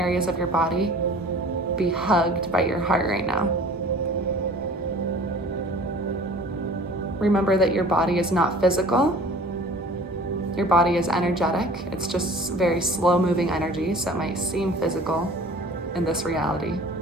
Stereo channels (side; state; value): both; normal; correlation 0.46